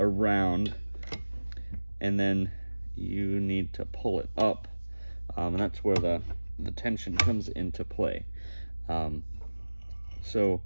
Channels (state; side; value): inverted; both; correlation -1.00